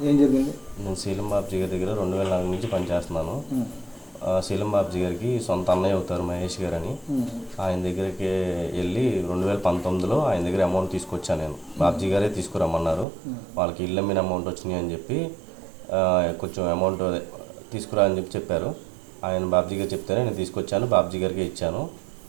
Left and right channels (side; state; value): left; drops out; at 13.1 s